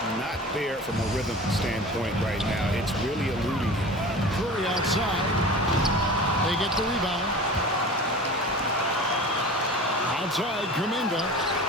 not there from a rhythm standpoint right now. It's really eluding him. Curry outside. They get the rebound. Outside, Kuminga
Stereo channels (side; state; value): both; normal; correlation 0.37